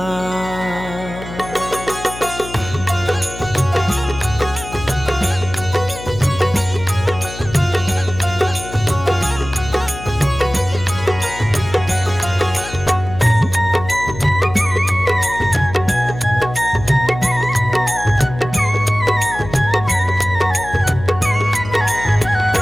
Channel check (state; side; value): noise; left; hum, 12 dB below the sound